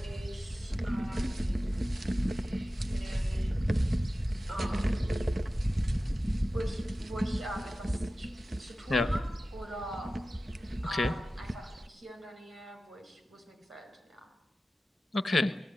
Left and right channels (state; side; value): normal; both; correlation 0.95